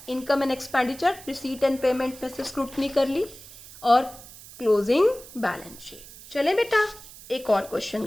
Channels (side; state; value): right; noise; hiss, 18 dB below the sound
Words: income and expenditure, receipt and payment में से स्क्रूटनी कर ली, और क्लोजिंग बैलेंस शीट। चले बेटा एक और क्वेश्चन